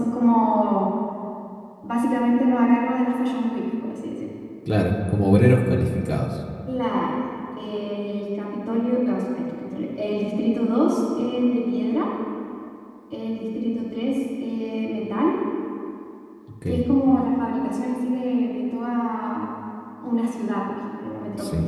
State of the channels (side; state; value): both; identical; correlation 1.00